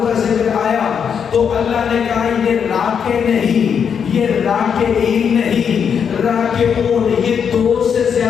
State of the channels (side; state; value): right; quieter; 7.2 dB